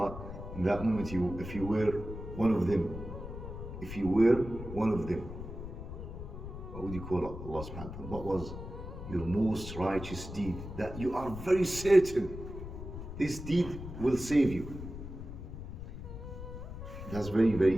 in that moment, if you were one of them, what would you call Allah subhanahu wa ta'ala? What was your most righteous deed that you are very certain this deed will save you? That's very,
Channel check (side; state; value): left; noise; rumble, 9 dB below the sound